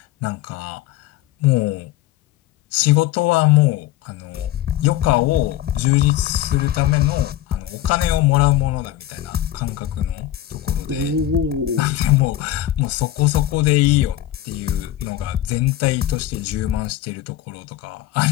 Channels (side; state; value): right; quieter; 13.7 dB